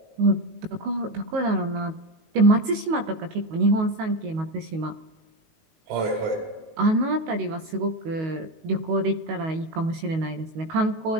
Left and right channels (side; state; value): left; late; 19 ms